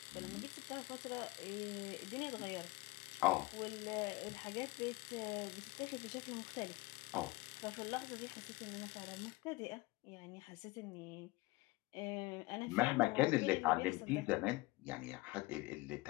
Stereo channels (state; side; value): quieter; right; 21.8 dB